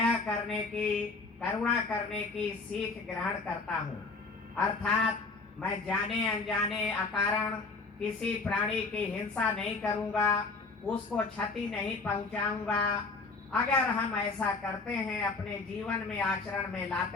करने की, करुणा करने की सीख ग्रहण करता हूँ। अर्थात मैं जाने अनजाने अकारण किसी प्राणी की हिंसा नहीं करूँगा, उसको क्षति नहीं पहुँचाऊँगा। अगर हम ऐसा करते हैं, अपने जीवन में आचरण में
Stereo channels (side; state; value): right; quieter; 3.9 dB